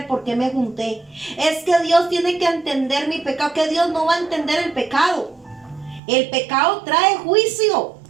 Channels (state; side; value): drops out; left; at 6.0 s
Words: por qué me junté. Es que Dios tiene que entender mi pecado, que Dios no va a entender el pecado. El pecado trae juicio,